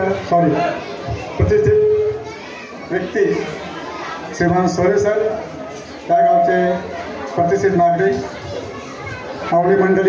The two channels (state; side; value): identical; both; correlation 1.00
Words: प्रतिष्ठित व्यक्ती श्रीमान सोरे सर, त्या गावचे प्रतिष्ठित नागरिक, मावळी